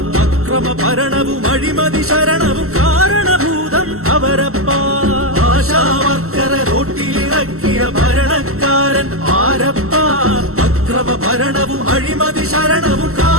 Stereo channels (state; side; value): late; left; 0.63 ms